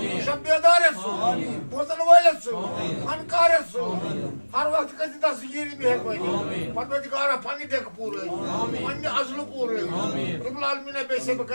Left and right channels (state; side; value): inverted; both; correlation -1.00